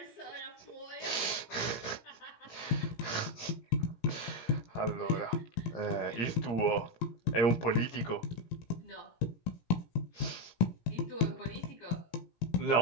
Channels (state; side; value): late; right; 17 ms